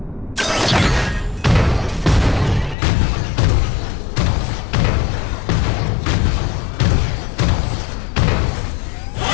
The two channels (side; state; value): right; drops out; at 2.8 s